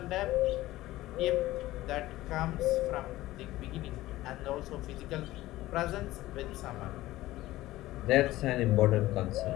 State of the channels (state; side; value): quieter; right; 16.6 dB